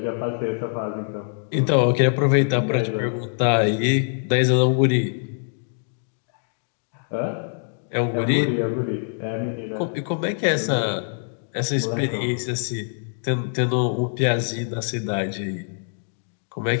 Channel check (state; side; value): silent; right; digital silence